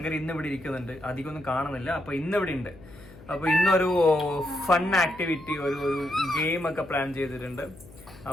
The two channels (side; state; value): left; noise; hum, 20 dB below the sound